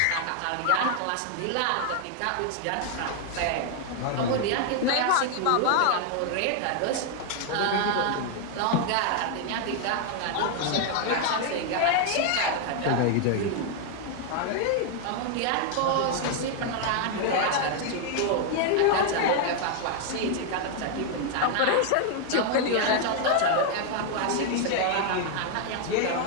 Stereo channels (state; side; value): different; both; correlation 0.00